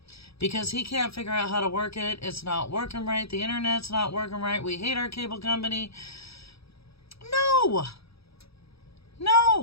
Because he can't figure out how to work it. It's not working right. The internet's not working right. We hate our cable company. No.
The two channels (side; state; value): right; late; 0.77 ms